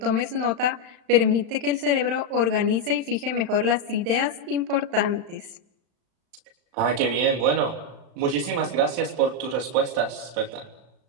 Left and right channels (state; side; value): late; left; 35 ms